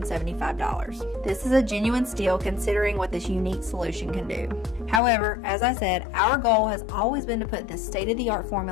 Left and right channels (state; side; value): drops out; right; at 5.0 s